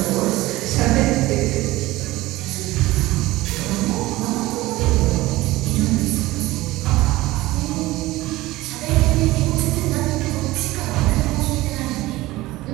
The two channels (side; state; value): left; quieter; 18.5 dB